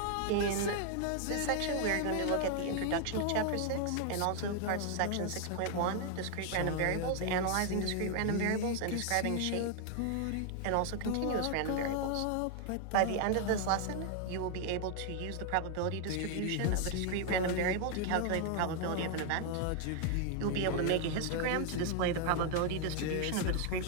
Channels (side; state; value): both; different; correlation 0.00